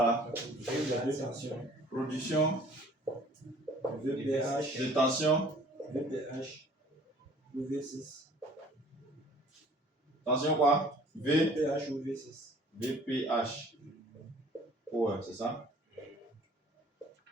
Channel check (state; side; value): normal; both; correlation 0.53